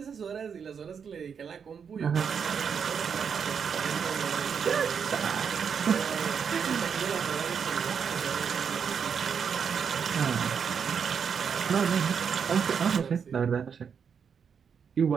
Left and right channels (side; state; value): left; quieter; 6.8 dB